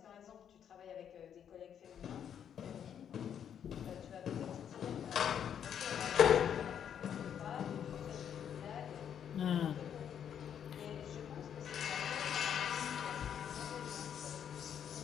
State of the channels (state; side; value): quieter; right; 8.8 dB